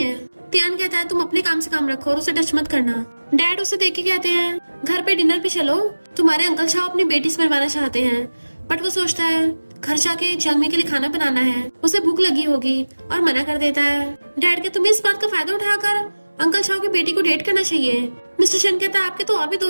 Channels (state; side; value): inverted; both; correlation -1.00